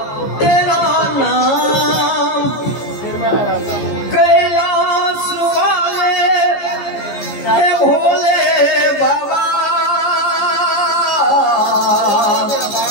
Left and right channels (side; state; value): right; late; 14 ms